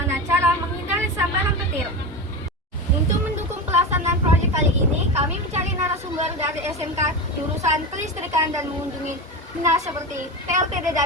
cara menghindari sambaran petir. Untuk mendukung pelaksanaan proyek kali ini, kami mencari narasumber dari SMK jurusan kelistrikan dan mengunjungi dinas seperti PLTD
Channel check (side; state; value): both; normal; correlation 0.22